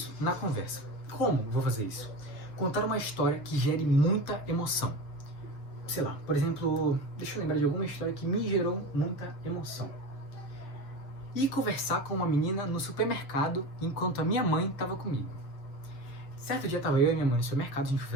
na conversa. Como eu vou fazer isso? Contar uma história que gere muita emoção. Sei lá, por exemplo, deixa eu lembrar de alguma história que me gerou muita emoção. E conversar com uma menina no supermercado enquanto a minha mãe estava comigo. Certo dia estava eu e minha mãe no supermercado, a gente foi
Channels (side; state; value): right; late; 7.6 ms